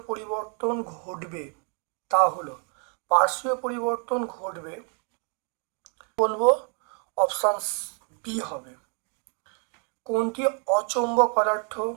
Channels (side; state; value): left; quieter; 39.3 dB